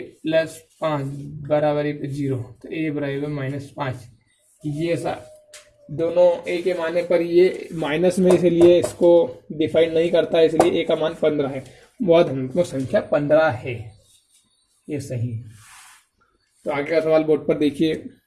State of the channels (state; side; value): identical; both; correlation 1.00